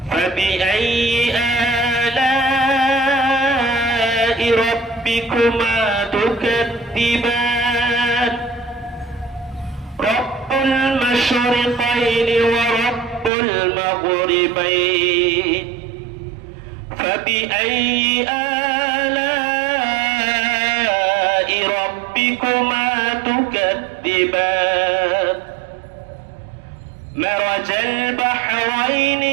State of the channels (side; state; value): left; drops out; at 13.3 s